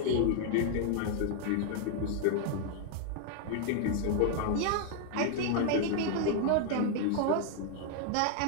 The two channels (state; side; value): different; both; correlation 0.00